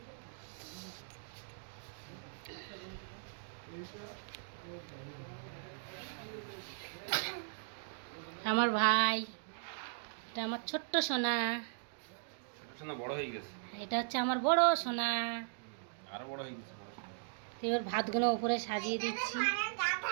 আমার ভাই, এটা আমার ছোট্ট সোনা। সোনা বড় হয়ে গেছে। এটা হচ্ছে আমার বড় সোনা। আরো বড় হয়ে গেছে। এবার ভাতগুলো উপরে সাজিয়ে দিচ্ছি।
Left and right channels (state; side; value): silent; left; digital silence